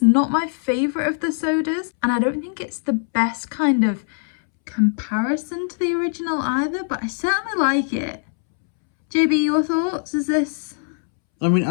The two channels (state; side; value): silent; right; 65 dB below the other